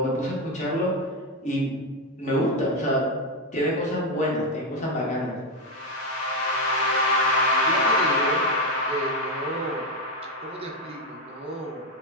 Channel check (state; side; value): normal; both; correlation 0.07